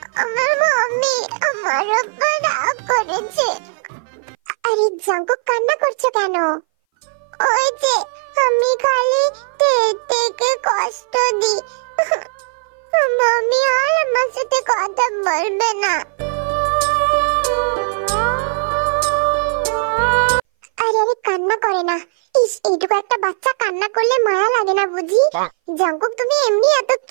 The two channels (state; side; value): silent; left; 60 dB below the other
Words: আমার মাম্মি আমার উপর রাগ করেছে। আরে জাঙ্কুক, কান্না করছো কেন? ওই যে আমি খালি তেকে কষ্ট দিই। মামি আর আমার সাথে কথা বলবে না। আরে আরে কান্না করে না। ইস, এইটুকু একটা বাচ্চা কান্না করলে মায়া লাগে না বুঝি? জাঙ্কুক তুমি এমনি এত